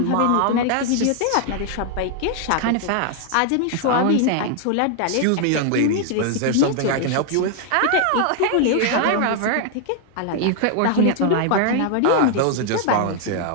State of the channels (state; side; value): different; both; correlation 0.00